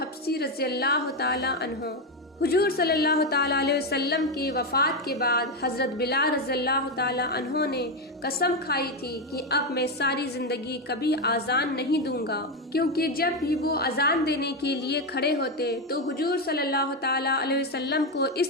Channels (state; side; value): normal; both; correlation 0.09